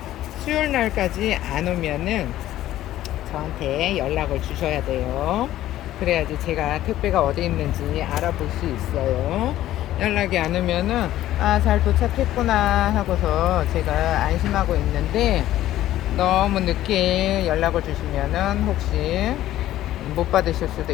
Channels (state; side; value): quieter; right; 13.8 dB